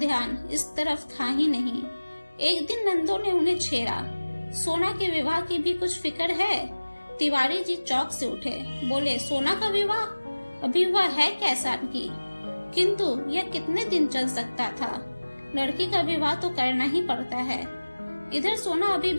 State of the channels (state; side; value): inverted; both; correlation -1.00